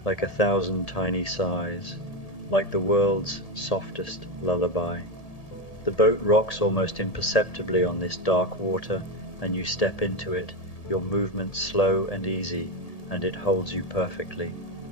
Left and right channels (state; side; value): late; right; 1.8 ms